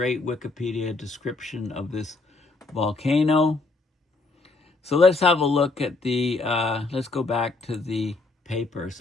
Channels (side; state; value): right; quieter; 3.6 dB